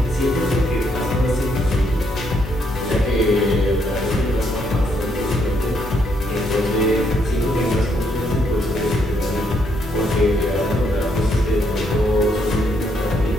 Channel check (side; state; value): both; normal; correlation 0.74